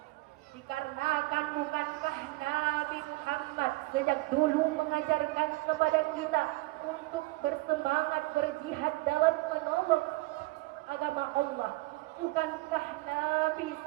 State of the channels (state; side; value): quieter; left; 21.7 dB